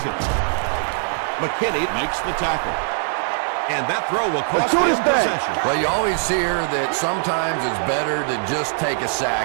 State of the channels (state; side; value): silent; left; 65 dB below the other